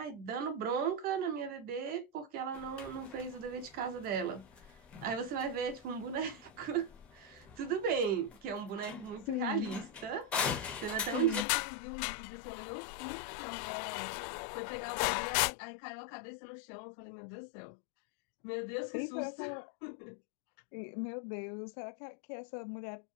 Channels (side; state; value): right; drops out; at 11.5 s